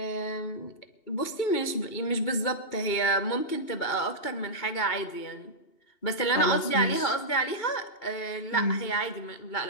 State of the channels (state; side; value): late; right; 2.8 ms